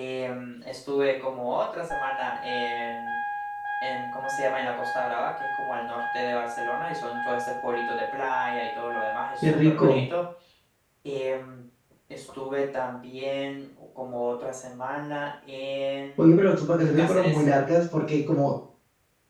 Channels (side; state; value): both; identical; correlation 1.00